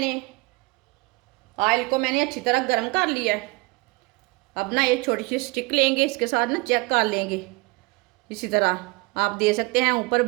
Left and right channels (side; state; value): left; quieter; 24.6 dB